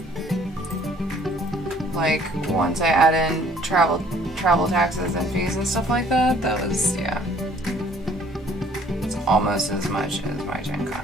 Like, once I add in travel taxes and fees and stuff like that, that was, yeah. It's almost as much as my Gen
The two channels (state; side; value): normal; both; correlation 0.59